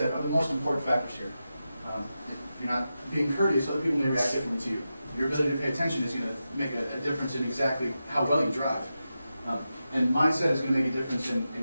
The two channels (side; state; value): both; inverted; correlation -0.90